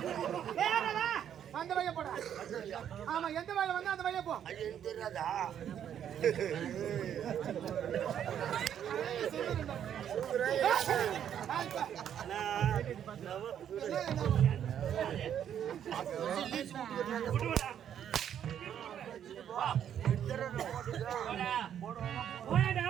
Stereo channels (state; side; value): quieter; left; 9.5 dB